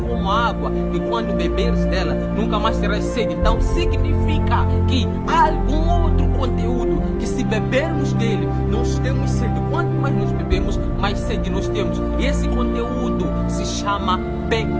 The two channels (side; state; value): both; identical; correlation 1.00